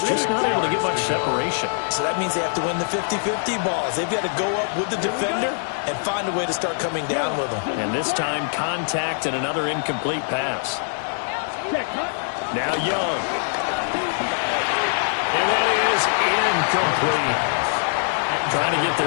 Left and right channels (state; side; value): silent; right; digital silence